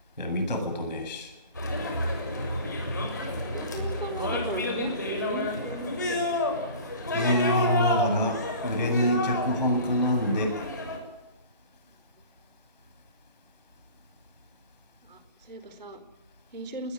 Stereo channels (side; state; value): both; inverted; correlation -0.41